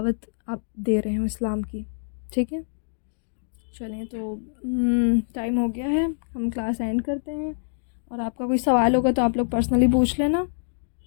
آپ دے رہے ہوں اسلام کی. ٹھیک ہے, چلیں تو ٹائم ہو گیا ہے, ہم کلاس اینڈ کرتے ہیں. اور آپ کا کوئی سوال ہوگا تو آپ لوگ پرسنلی پوچھ لینا.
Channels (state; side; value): silent; right; digital silence